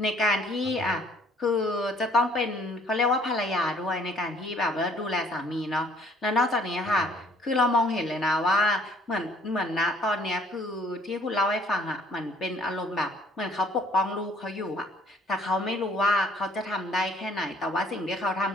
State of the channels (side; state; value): both; normal; correlation 0.59